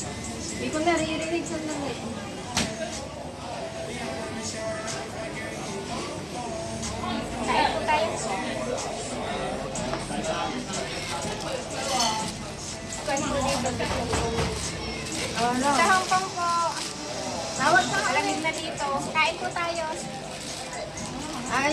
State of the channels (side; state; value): both; identical; correlation 1.00